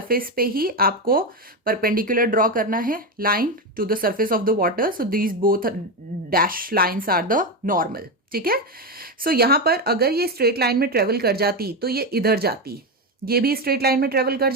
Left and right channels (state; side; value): normal; both; correlation 0.12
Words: पे ही आपको परपेंडिकुलर ड्रॉ करना है line to the surface of the water. So these both dash lines are the normal, ठीक है। सो यहां पर अगर ये स्ट्रेट लाइन में ट्रेवल कर जाती तो ये इधर जाती, ये भी स्ट्रेट लाइन में ट्रेवल कर